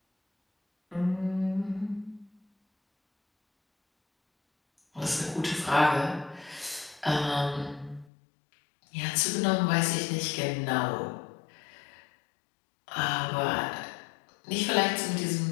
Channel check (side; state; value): right; drops out; at 8.1 s